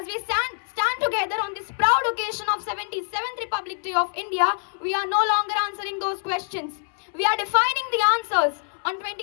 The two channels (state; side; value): silent; right; 60 dB below the other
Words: we stand together on this proud occasion of 77th Republic Day of India, we are no longer answering those questions. We are defining the answers. On